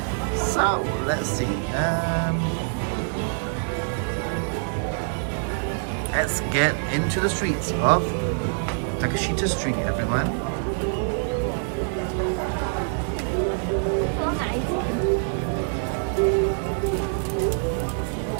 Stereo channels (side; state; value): left; silent; 62 dB below the other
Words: So let's see. Let's get into the streets of Takeshita Street, everyone.